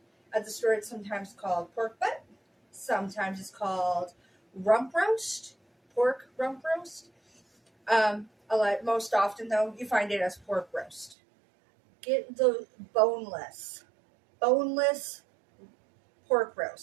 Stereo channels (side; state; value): left; drops out; at 11.2 s